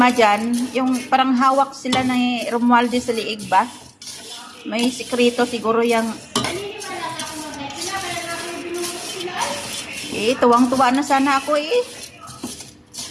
dyan, yung parang hawak sila ni Romualdez sa liig ba? May sikreto siguro yung tuwang-tuwa na sana ako eh.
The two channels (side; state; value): both; identical; correlation 1.00